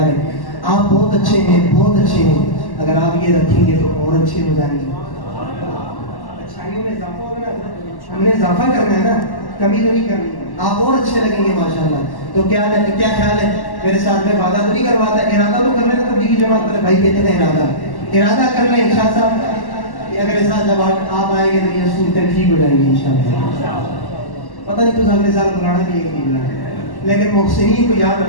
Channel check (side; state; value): right; late; 1.1 ms